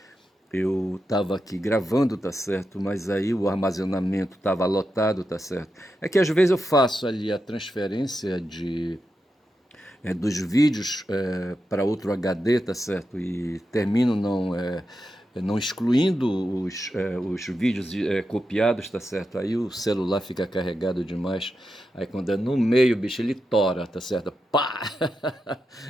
Eu estava aqui gravando, tá certo? Mas aí o armazenamento estava lotado, tá certo? É que às vezes eu faço ali a transferência dos vídeos para outro HD, tá certo? E termino não excluindo os vídeos copiados, tá certo? Aí o celular fica carregado demais. Aí quando é no meio, bicho, ele tora, tá certo? Pá!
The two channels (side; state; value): both; normal; correlation 0.88